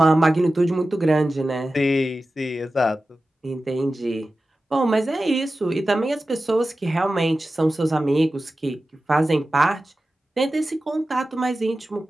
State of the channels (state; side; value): normal; both; correlation 0.94